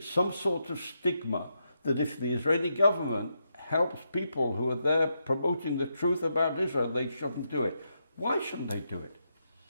some sort of stigma that if the Israeli government helps people who are there promoting the truth about Israel, they shouldn't do it. Why shouldn't they do it?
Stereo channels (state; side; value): inverted; both; correlation -0.83